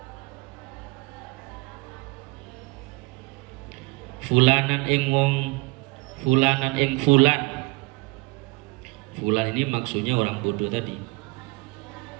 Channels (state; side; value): quieter; left; 26.2 dB